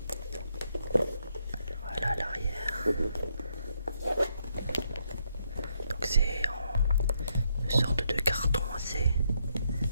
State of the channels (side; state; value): both; inverted; correlation -0.76